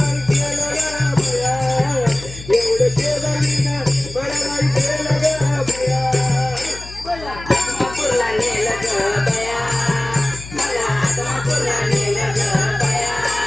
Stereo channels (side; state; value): left; noise; hum, 15 dB below the sound